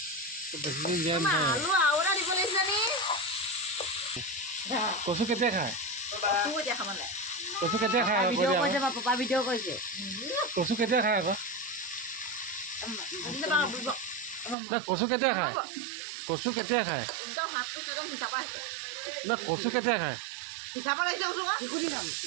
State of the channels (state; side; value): drops out; left; at 14.6 s